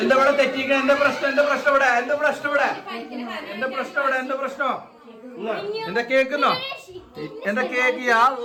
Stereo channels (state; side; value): identical; both; correlation 1.00